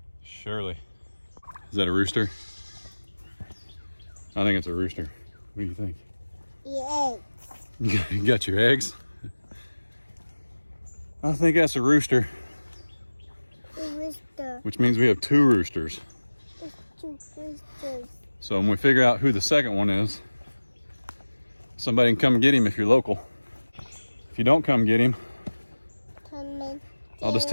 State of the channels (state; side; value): inverted; both; correlation -1.00